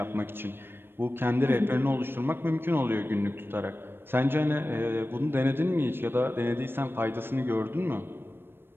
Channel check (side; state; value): left; late; 0.10 ms